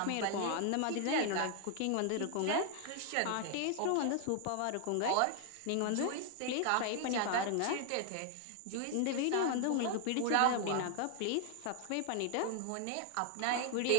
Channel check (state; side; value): different; both; correlation 0.00